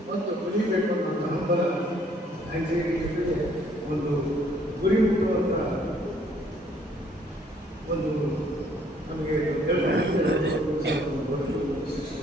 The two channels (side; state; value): both; normal; correlation 0.63